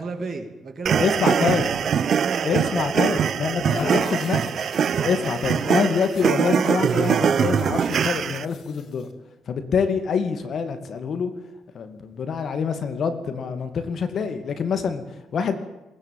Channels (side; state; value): both; normal; correlation 0.72